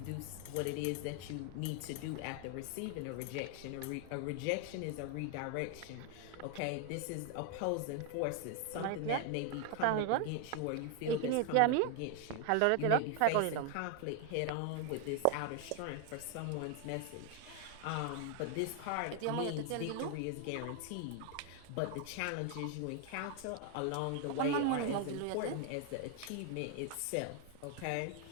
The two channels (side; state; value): both; different; correlation 0.01